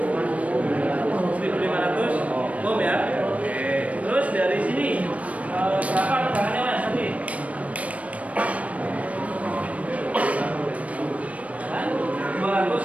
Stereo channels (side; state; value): left; late; 0.066 ms